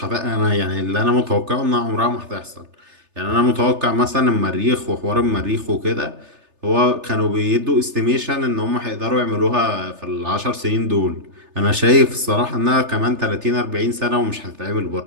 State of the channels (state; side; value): late; left; 3.3 ms